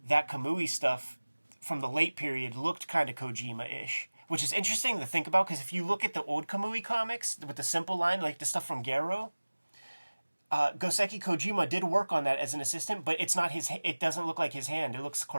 that Kamui stuff from the late period looked kind of Kojima-ish. which is interesting to think about because if you look at the old Kamui comics with the simple line, like the stuff from Garo, Goseki Kojima did work on that as an assistant, but it's not his. It doesn't look like his hand. It looks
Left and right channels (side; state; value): both; inverted; correlation -1.00